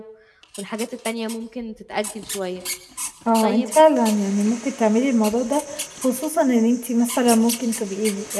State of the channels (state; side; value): identical; both; correlation 1.00